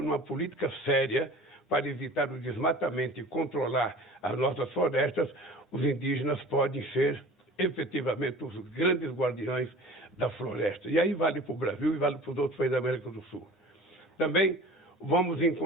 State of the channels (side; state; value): both; normal; correlation 0.42